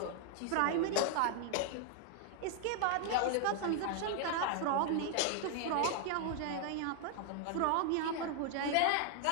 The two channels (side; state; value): both; different; correlation 0.00